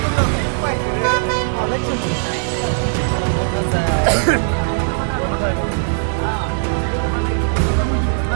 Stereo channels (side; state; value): left; silent; digital silence